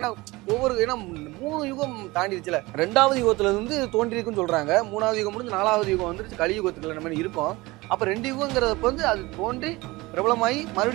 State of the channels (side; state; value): left; quieter; 21.5 dB